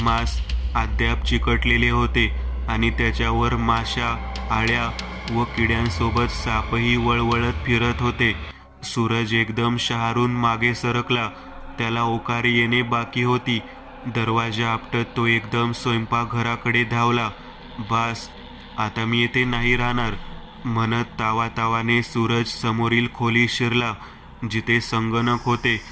मांस अद्याप चिकटलेले होते आणि त्याच्यावर माशा, आळ्या व किड्यांसोबत सापही वळवळत फिरत होते. सूरज एकदम शहारून मागे सरकला. त्याला ओकारी येणे बाकी होती. दरवाजा आपटत तो एकदम स्वयंपाकघराकडे धावला. बास, आता मी येथे नाही राहणार म्हणत तावातावाने सूरज समोरील खोलीत शिरला, जिथे संगणक होते,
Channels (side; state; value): both; identical; correlation 1.00